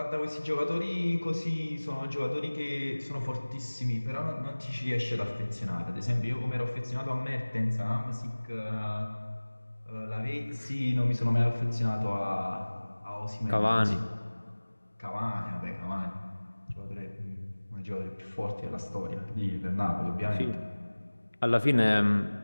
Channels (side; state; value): both; inverted; correlation -1.00